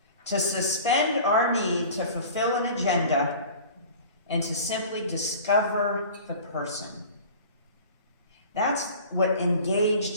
to suspend our need to fulfill an agenda, and to simply discover the person. That's what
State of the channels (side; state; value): both; inverted; correlation -0.42